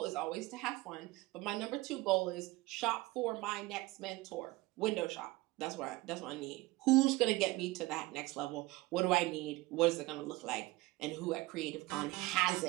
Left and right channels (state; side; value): quieter; left; 20.5 dB